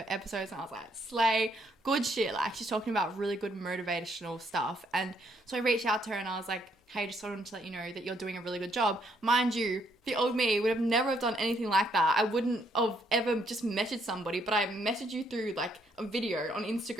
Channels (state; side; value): normal; both; correlation 0.71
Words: episodes and I was like, slay. Good shit. Like, she's talking about really good motivational stuff. And so I reached out to her and I was like, hey, just wanted to let you know that you're doing a really good job. Mind you, the old me would have never have done anything like that. I wouldn't have ever just messaged somebody, but I messaged you through like a video on